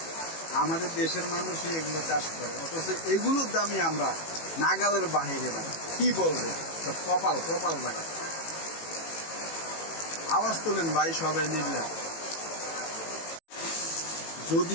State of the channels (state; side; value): late; right; 18 ms